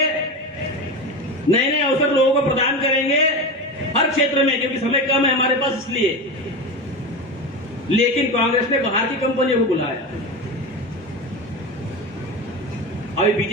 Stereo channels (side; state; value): both; normal; correlation 0.22